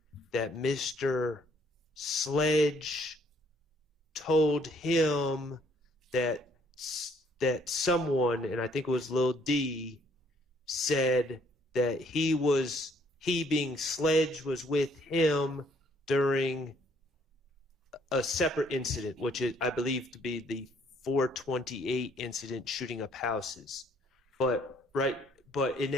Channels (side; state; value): both; normal; correlation 0.64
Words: that Mr. Sledge told him that someone, and I think it was Lil D, said that he being Sledge was with him during a separate incident, which is, I believe to be the 428 incident shooting up houses. But in